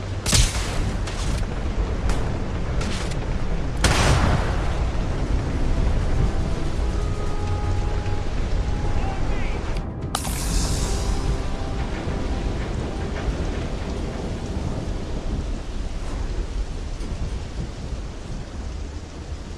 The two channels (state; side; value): identical; both; correlation 1.00